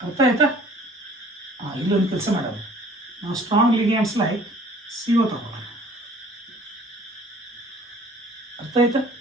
ಅರ್ಥ ಆಯ್ತಾ? ಇಲ್ಲೊಂದು ಕೆಲಸ ಮಾಡೋದು, ನಾವು ಸ್ಟ್ರಾಂಗ್ ಲಿಗ್ಯಾಂಡ್ಸ್ ಲೈಕ್ CO ತಗೊಳ್ಳೋಣ. ಅರ್ಥ ಆಯ್ತಾ?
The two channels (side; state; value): both; normal; correlation 0.52